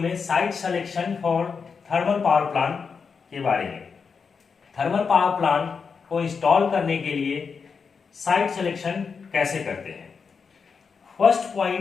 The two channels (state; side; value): quieter; right; 5.6 dB